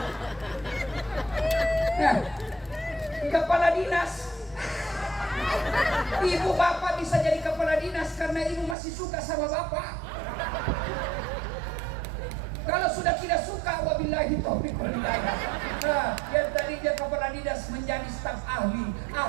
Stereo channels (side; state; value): left; drops out; at 8.8 s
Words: Nah, kepala dinas. Ibu bapak bisa jadi kepala dinas karena ibu masih suka sama bapak. Kalau sudah tidak suka, wabillahi taufiq wal hidayah. Nah, yang tadi dia kepala dinas menjadi staf ahli